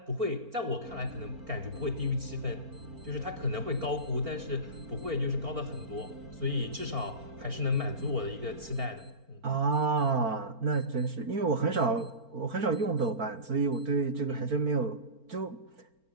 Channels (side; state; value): left; late; 4.4 ms